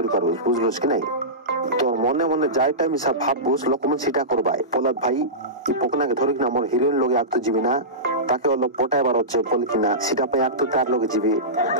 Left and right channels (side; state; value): both; normal; correlation -0.18